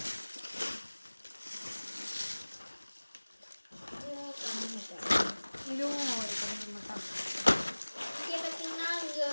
இதுவும் ஒரு கம்மி மெத்தாடு. இங்கே பார்த்தீங்கன்னா இங்கே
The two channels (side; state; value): both; inverted; correlation -1.00